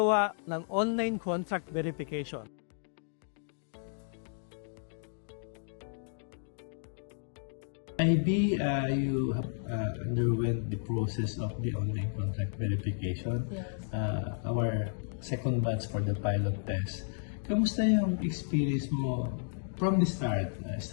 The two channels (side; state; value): right; silent; digital silence